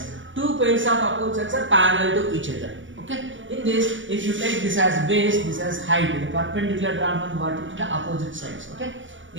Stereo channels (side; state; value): left; late; 0.56 ms